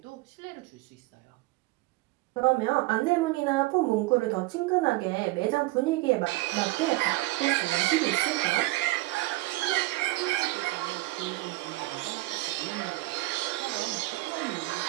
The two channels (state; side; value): quieter; left; 20.5 dB